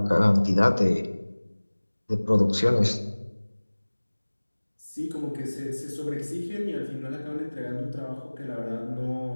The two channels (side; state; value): both; inverted; correlation -1.00